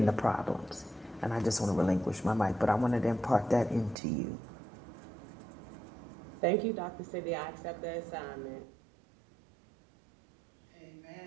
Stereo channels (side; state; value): left; drops out; at 4.0 s